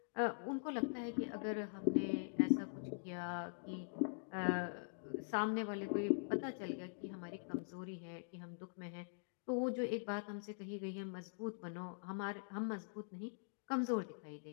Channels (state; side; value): silent; right; digital silence